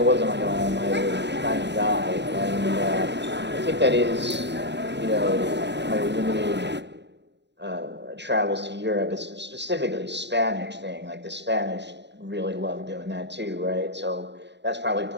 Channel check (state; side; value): late; left; 0.51 ms